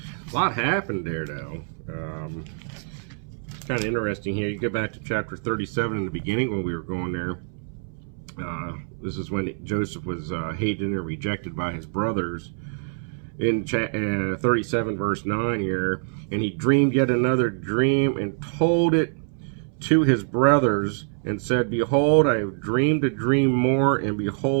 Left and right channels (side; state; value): left; silent; 61 dB below the other